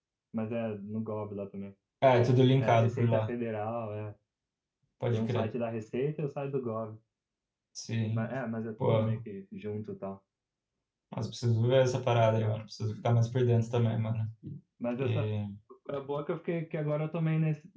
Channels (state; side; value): identical; both; correlation 1.00